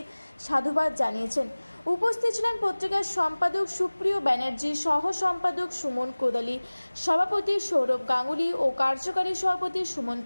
সাধুবাদ জানিয়েছেন। উপস্থিত ছিলেন পত্রিকার সম্পাদক সুপ্রিয় ব্যানার্জি, সহ সম্পাদক সুমন কোদালি, সভাপতি সৌরভ গাঙ্গুলি ও কার্যকারী সভাপতি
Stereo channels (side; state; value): both; inverted; correlation -1.00